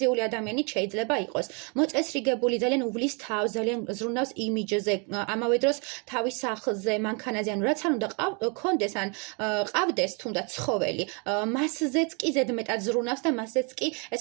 ადამიანი შეიძლება იყოს. მოწესრიგებული, ძალიან უვლის თავს, ძალიან ზრუნავს იმიჯზე, ამავე დროს თავის სახლზე, მანქანაზე, ანუ რაც არ უნდა კონდეს, ან ყავდეს თუნდაც ცხოველი, მასზეც კი ზედმეტად ზრუნავს და მასზეც კი,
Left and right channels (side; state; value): left; quieter; 34.3 dB